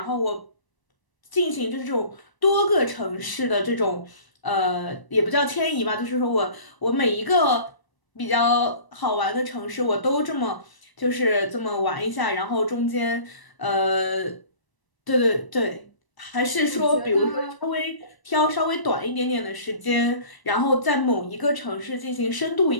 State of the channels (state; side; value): late; right; 1.0 ms